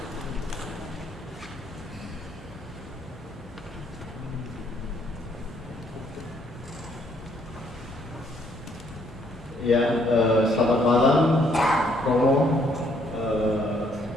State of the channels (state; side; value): normal; both; correlation 0.68